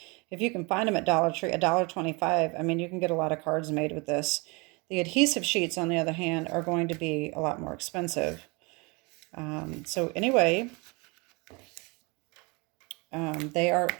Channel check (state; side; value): quieter; left; 28.4 dB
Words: if you can find them at Dollar Tree, $1.25, I mean, you can get a lot of cards made with this. The adhesive sheets, on the other hand, are going to be a lot more expensive. So anyway, they are